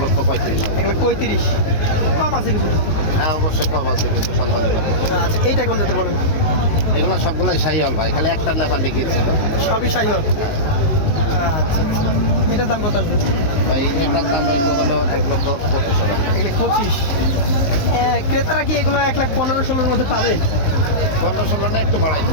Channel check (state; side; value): late; right; 19 ms